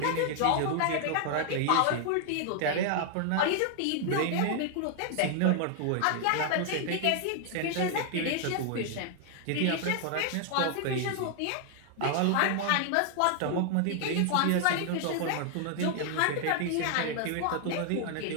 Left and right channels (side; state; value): both; different; correlation 0.00